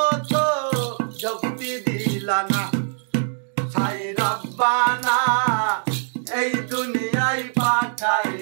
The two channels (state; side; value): silent; left; digital silence